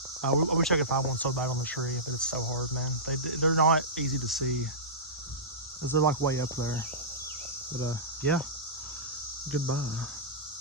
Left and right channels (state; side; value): normal; both; correlation -0.18